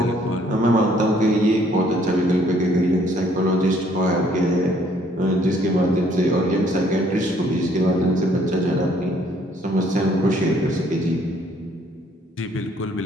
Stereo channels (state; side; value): normal; both; correlation 0.63